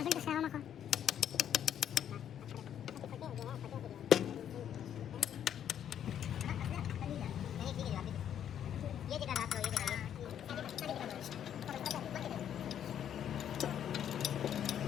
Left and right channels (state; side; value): quieter; right; 9.7 dB